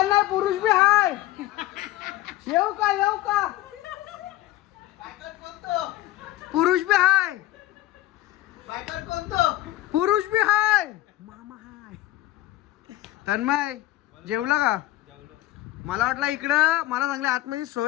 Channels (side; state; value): right; quieter; 16.0 dB